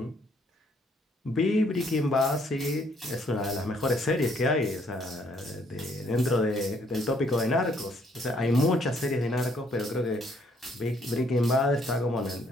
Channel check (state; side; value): normal; both; correlation 0.67